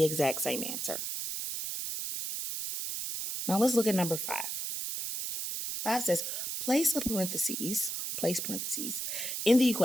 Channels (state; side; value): noise; right; hiss, 3 dB below the sound